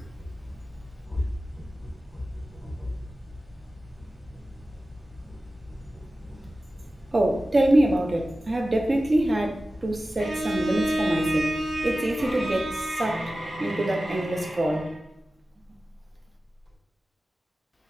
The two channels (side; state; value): both; normal; correlation 0.95